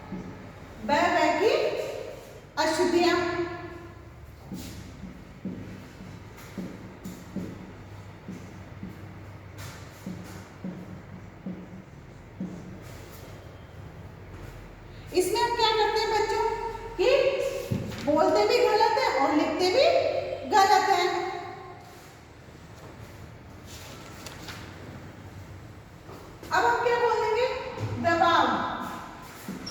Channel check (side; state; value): both; identical; correlation 1.00